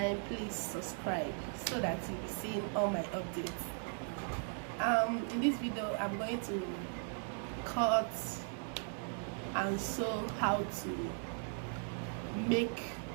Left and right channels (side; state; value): left; silent; 52 dB below the other